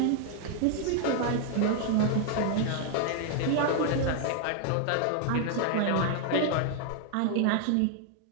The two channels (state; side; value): different; both; correlation 0.00